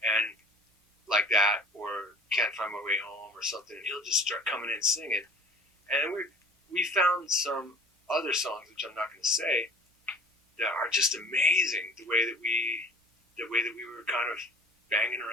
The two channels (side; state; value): both; normal; correlation 0.45